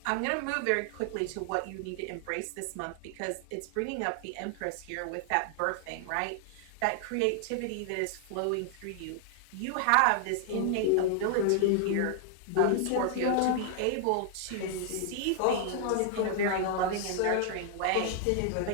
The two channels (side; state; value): both; different; correlation 0.00